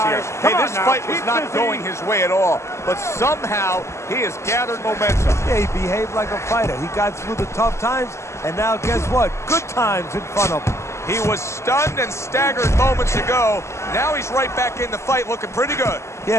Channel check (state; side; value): late; right; 0.13 ms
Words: Hey, this fight was not going his way at all, but somehow he has gathered momentum. Yeah, he behaved like a fighter. He got through the tough times, and now guess what? Good times in front of him. He was stunned and staggered moments ago. Now he's right back in the fight looking pretty good.